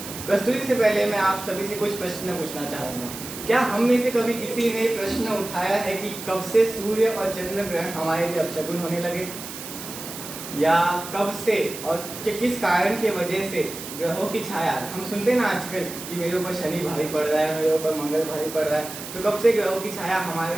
प्रस्तुति से पहले मैं आप सभी से कुछ प्रश्न पूछना चाहूँगा। क्या हम में से कभी किसी ने प्रश्न उठाया है कि कब से सूर्य और चंद्र ग्रहण हमारे लिए अपशकुन होने लगे, या कब से और किस कारण की वजह से ग्रहों की छाया, हम सुनते हैं ना आजकल कि मेरे ऊपर शनि भारी पड़ रहा है, मेरे ऊपर मंगल भारी पड़ रहा है, तो कब से ग्रहों की छाया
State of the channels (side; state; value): right; noise; hiss, 10 dB below the sound